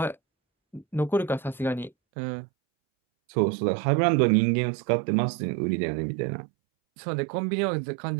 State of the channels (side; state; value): left; drops out; at 1.9 s